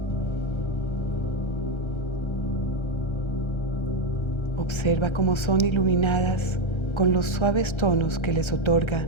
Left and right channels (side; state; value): right; late; 1.3 ms